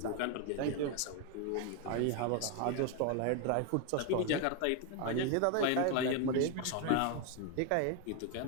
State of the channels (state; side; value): different; both; correlation 0.01